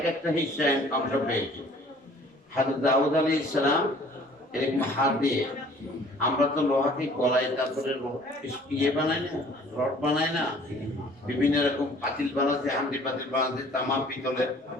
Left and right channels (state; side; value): normal; both; correlation 0.53